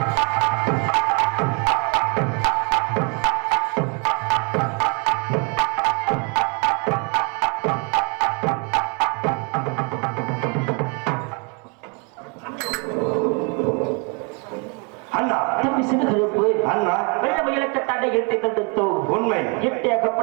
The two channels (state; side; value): quieter; left; 34.6 dB